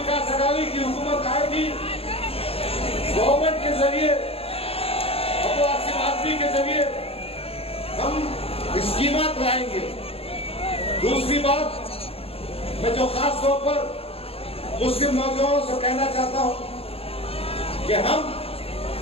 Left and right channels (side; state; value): right; late; 0.28 ms